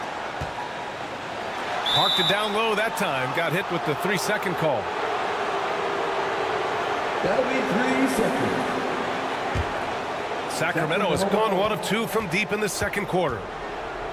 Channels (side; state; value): both; identical; correlation 1.00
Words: Parked it down low that time. Got hit with the 3-second call. That'll be 3 seconds. Sacramento has gone 1 of 2 from deep in the second quarter.